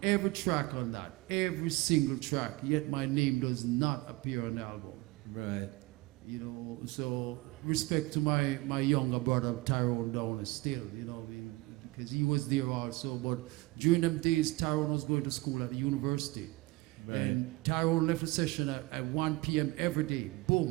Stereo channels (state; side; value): quieter; left; 21.6 dB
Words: every track on that, every single track, yet my name does not appear on the album. Right. You know, so respect to my younger brother Tyrone Down still, you know, because he was there also. But during them days, Tyrone was going to school at the university. Right. And Tyrone left the session at 1 p.m. every day.